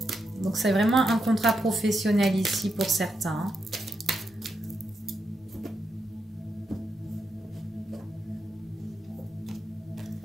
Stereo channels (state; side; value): normal; both; correlation 0.84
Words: Donc c'est vraiment un contrat professionnel ici pour certains, hein.